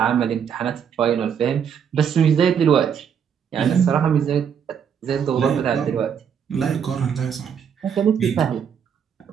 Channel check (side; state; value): left; quieter; 7.7 dB